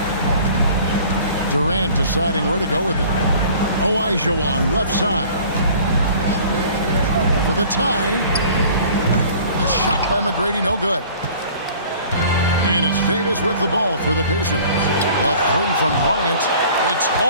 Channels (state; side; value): inverted; both; correlation -0.49